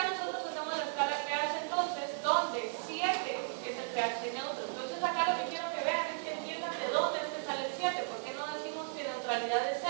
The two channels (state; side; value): silent; left; digital silence